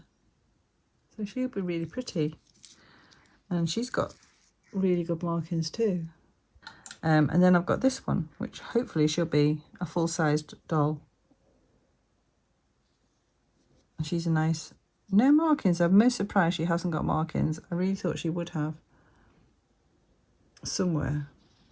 So she'll be really pretty. And she's got really good markings too. And then I've got this one, which hopefully she'll be a full-sized doll. And she's a nice, no markings. I'm most surprised she hasn't got markings. I really thought she would have somewhere,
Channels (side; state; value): both; identical; correlation 1.00